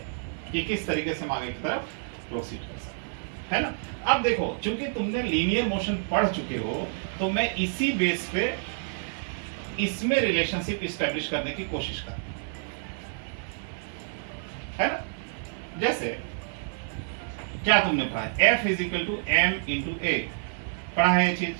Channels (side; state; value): left; silent; 57 dB below the other